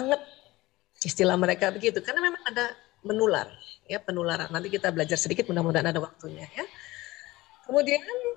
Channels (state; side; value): quieter; right; 19.2 dB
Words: Istilah mereka begitu, karena memang ada menular, ya penularan. Nanti kita belajar sedikit, mudah-mudahan ada waktunya ya. Kemudian